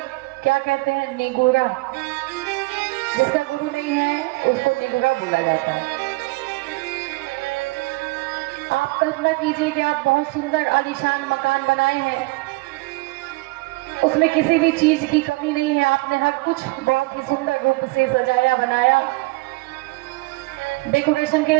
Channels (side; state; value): left; quieter; 24.7 dB